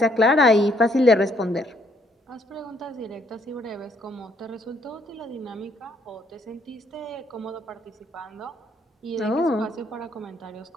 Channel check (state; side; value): normal; both; correlation 0.69